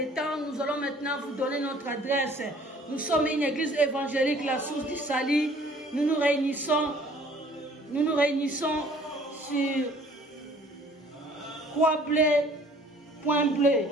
temps. Nous allons maintenant vous donner notre adresse. Nous sommes une église évangélique, la source du salut. Nous nous réunissons sur Point Bleu,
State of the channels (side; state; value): both; normal; correlation 0.55